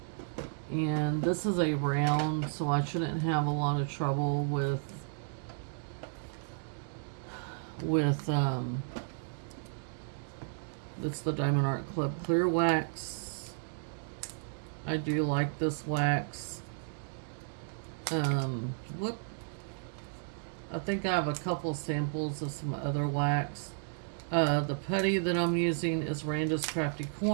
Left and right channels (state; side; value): silent; left; digital silence